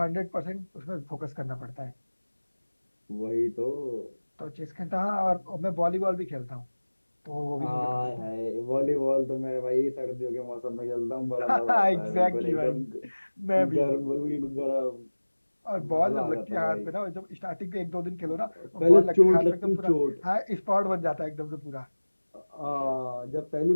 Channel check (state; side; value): inverted; both; correlation -1.00